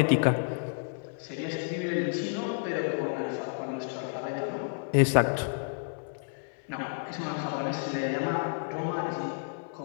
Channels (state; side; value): silent; right; 56 dB below the other